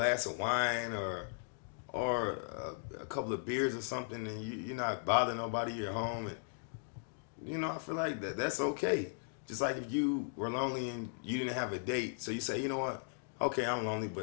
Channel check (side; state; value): right; silent; digital silence